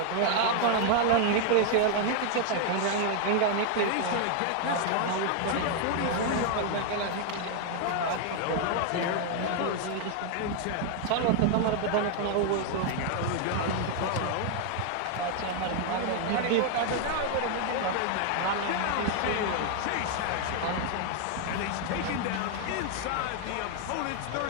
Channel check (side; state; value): both; different; correlation 0.00